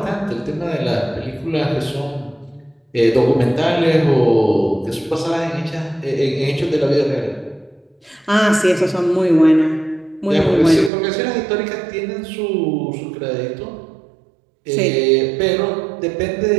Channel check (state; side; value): drops out; left; at 10.9 s